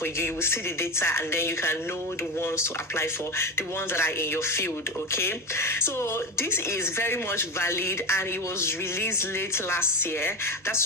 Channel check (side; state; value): both; normal; correlation 0.22